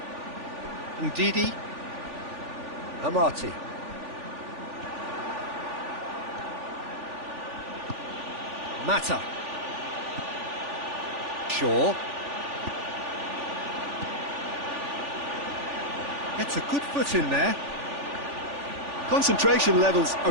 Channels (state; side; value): late; left; 3.4 ms